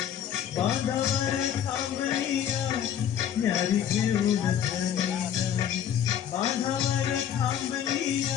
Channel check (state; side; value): quieter; right; 9.6 dB